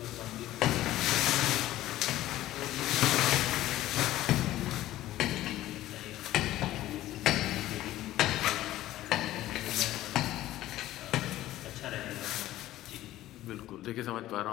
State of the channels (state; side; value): quieter; right; 14.9 dB